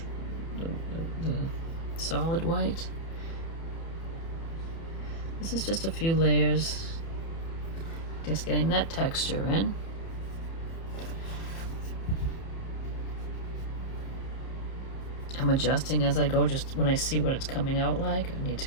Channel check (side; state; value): right; late; 30 ms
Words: solid white. This is just a few layers, just getting that texture in. I'm adjusting as I go, just when I see what it's coming out like. I need to